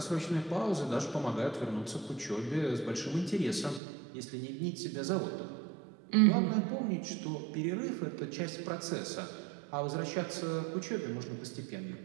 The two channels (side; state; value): left; drops out; at 3.8 s